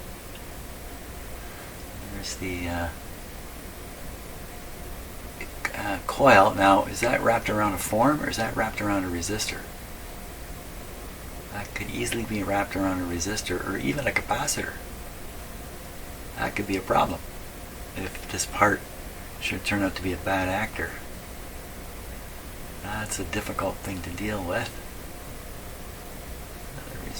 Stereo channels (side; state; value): both; identical; correlation 1.00